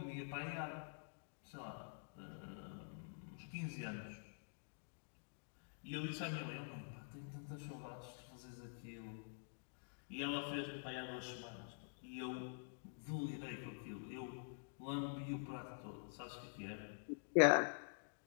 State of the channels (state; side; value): silent; right; digital silence